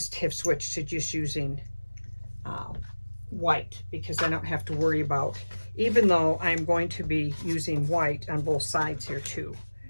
have switched to just using white, because I don't have to worry about, even though I'm going to be using white on both sides here too.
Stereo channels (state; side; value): inverted; both; correlation -1.00